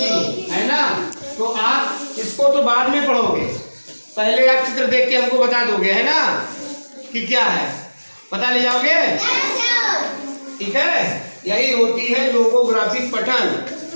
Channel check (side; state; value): both; inverted; correlation -1.00